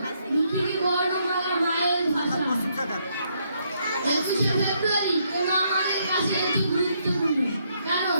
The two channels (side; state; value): both; inverted; correlation -0.74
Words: পৃথিবী বর্ণমালা মায়ের ভাষা। 21শে ফেব্রুয়ারি কেন আমাদের কাছে এটি গুরুত্বপূর্ণ?